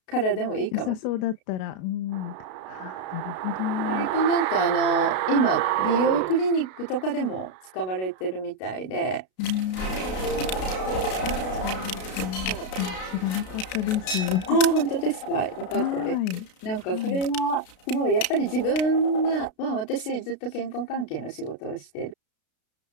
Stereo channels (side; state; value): right; late; 32 ms